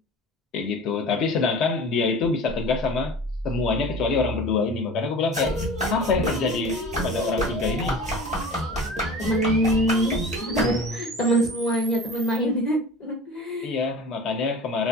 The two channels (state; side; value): normal; both; correlation 0.38